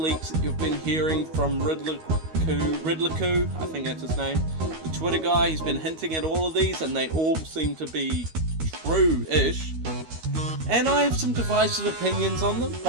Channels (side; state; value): left; late; 13 ms